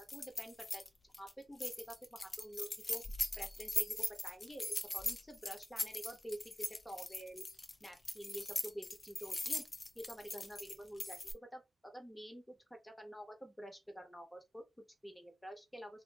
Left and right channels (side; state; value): both; normal; correlation 0.97